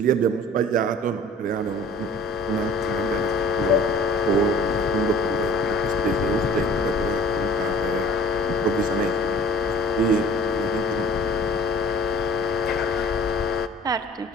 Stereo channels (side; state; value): both; normal; correlation 0.48